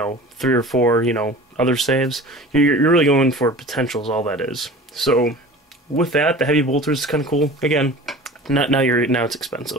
3 or 4, other saves. You're really going for potentials, all that is. So, with that, the heavy bolter is kind of cool. Again, now it's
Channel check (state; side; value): normal; both; correlation 0.40